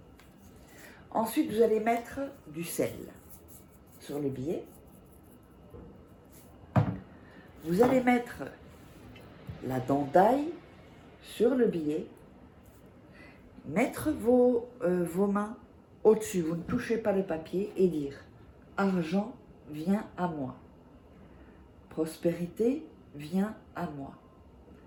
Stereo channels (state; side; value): identical; both; correlation 1.00